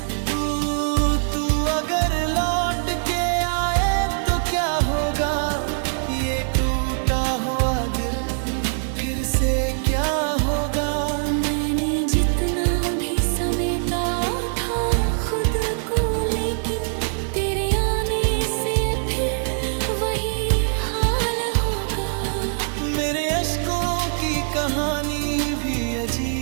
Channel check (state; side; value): silent; left; digital silence